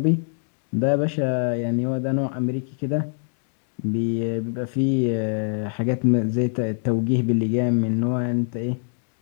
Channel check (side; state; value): right; silent; digital silence